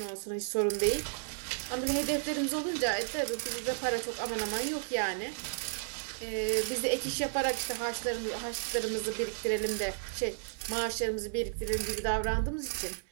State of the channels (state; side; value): silent; left; 56 dB below the other